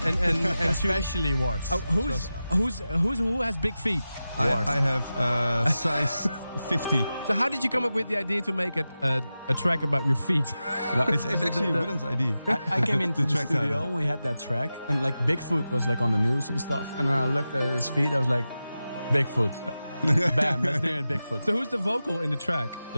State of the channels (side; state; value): both; inverted; correlation -0.93